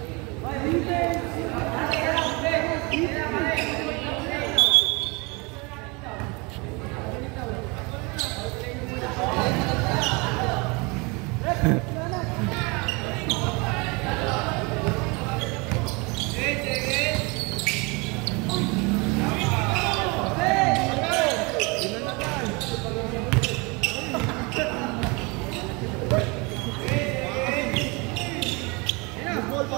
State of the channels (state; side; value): quieter; left; 28.1 dB